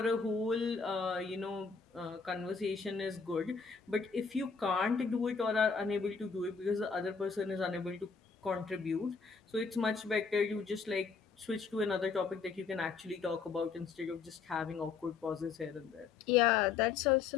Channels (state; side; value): quieter; right; 5.4 dB